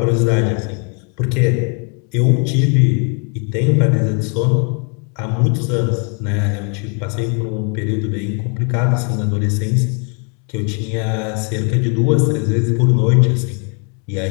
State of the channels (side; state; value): right; quieter; 38.3 dB